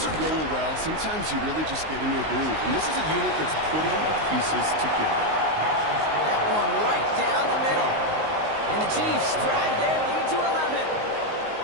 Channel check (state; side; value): late; left; 19 ms